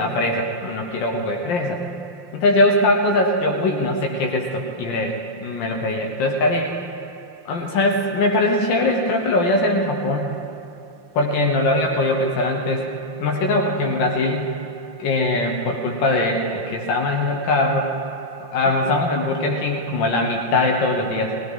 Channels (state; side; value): late; right; 5.7 ms